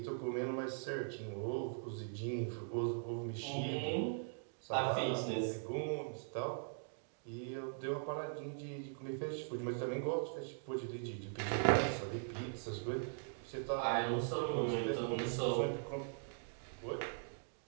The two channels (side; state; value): left; silent; digital silence